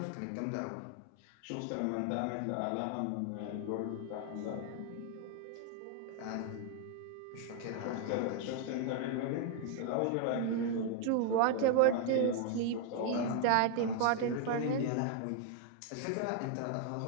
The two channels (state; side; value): different; both; correlation 0.00